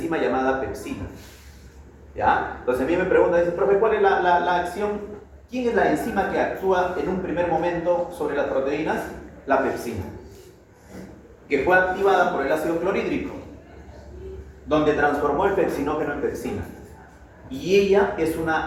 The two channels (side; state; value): both; identical; correlation 1.00